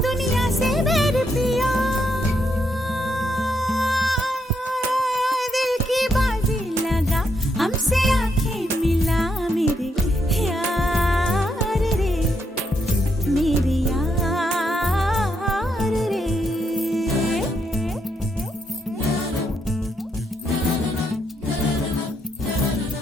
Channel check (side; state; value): both; normal; correlation 0.78